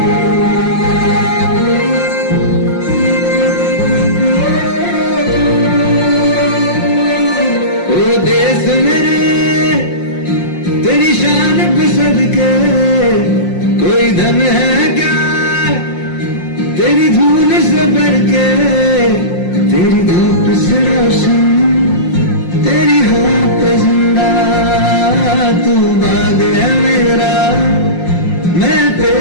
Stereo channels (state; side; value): late; right; 5.6 ms